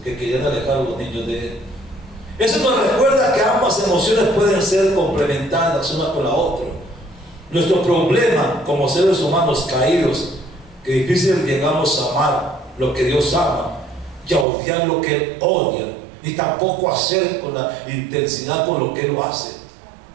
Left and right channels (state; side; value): drops out; left; at 14.5 s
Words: que querían alejar a los niños de él. Eso nos recuerda que ambas emociones pueden ser complementarias una con la otra. Nuestro problema como seres humanos caídos, que difícil llegamos a amar lo que Dios ama y a odiar lo que Él odia, ni tampoco hacer con la intensidad con lo que Él lo hace.